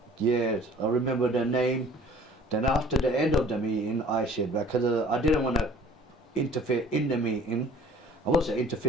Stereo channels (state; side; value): normal; both; correlation 0.50